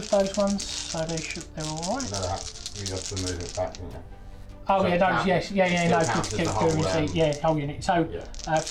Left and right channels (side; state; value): both; identical; correlation 1.00